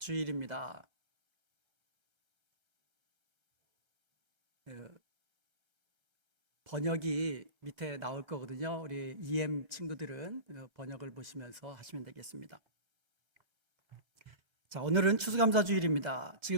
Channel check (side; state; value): left; late; 1.3 ms